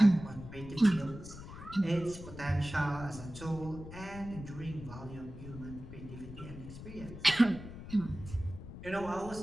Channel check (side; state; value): left; noise; rumble, 12 dB below the sound